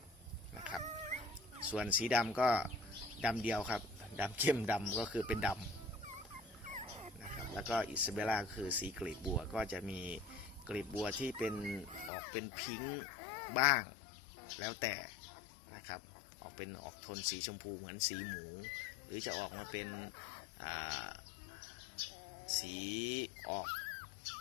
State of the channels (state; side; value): drops out; right; at 12.1 s